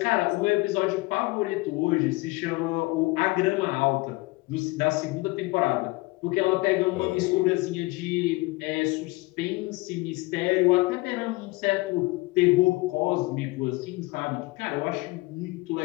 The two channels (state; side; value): quieter; right; 22.8 dB